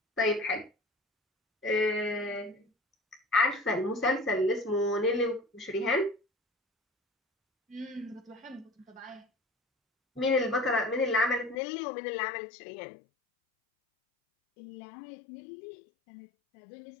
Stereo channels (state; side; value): drops out; right; at 11.6 s